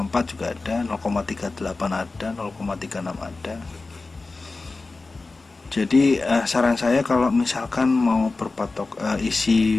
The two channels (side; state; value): right; quieter; 3.6 dB